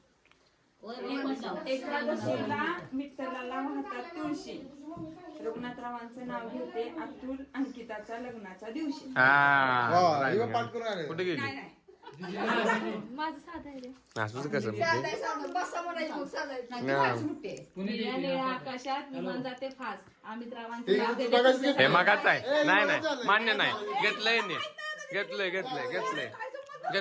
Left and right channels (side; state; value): both; identical; correlation 1.00